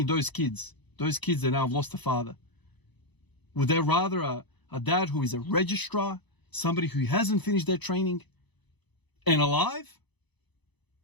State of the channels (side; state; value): right; late; 1.0 ms